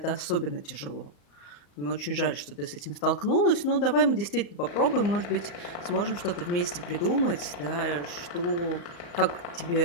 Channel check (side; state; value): right; late; 34 ms